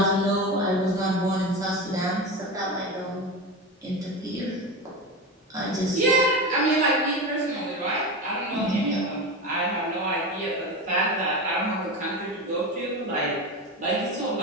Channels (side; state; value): both; normal; correlation 0.22